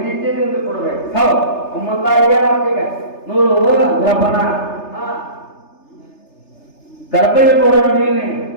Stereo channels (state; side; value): late; right; 3.3 ms